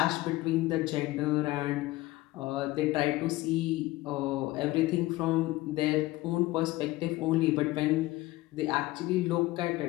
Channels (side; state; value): right; quieter; 18.6 dB